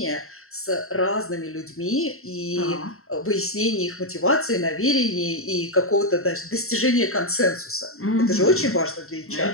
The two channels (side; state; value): right; late; 0.63 ms